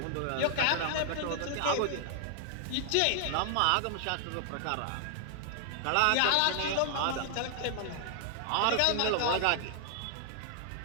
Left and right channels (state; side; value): different; both; correlation 0.00